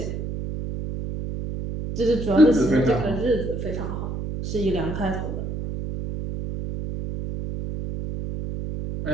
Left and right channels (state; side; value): noise; right; hum, 5 dB below the sound